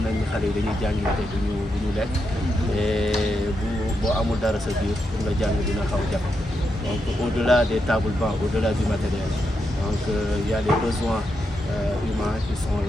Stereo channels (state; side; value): normal; both; correlation 0.84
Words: nañ ni xale yi dañuy jàngi te duñu lekk et boo amul dara sa biir pour nga jàng dina xaw jafe donc au-delà des tables bancs au-delà du matériel donc il y a les besoins humains qui sont